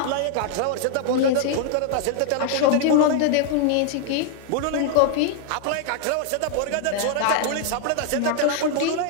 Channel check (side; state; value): both; different; correlation 0.00